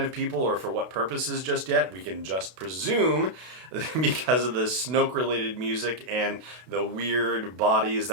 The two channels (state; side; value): late; left; 32 ms